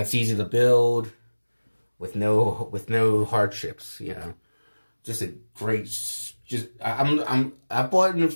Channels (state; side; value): inverted; both; correlation -1.00